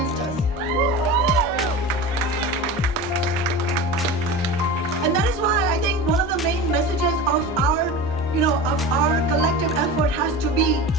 us. And that is why I think one of the main messages of our collective effort has to be,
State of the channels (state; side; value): normal; both; correlation 0.31